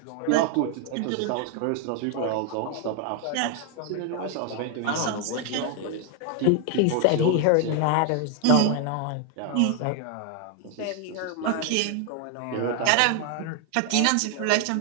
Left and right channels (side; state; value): both; different; correlation 0.00